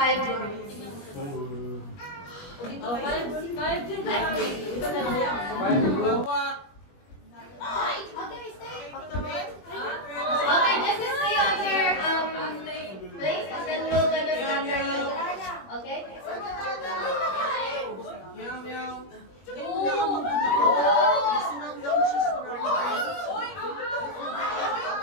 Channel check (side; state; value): right; late; 21 ms